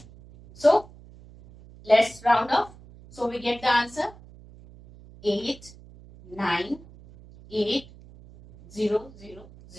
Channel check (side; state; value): right; noise; hum, 21 dB below the sound